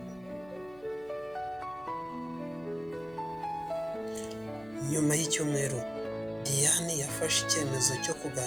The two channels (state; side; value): noise; left; hum, 23 dB below the sound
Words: Nyuma y'icyumweru, Diane yafashe icyemezo cyo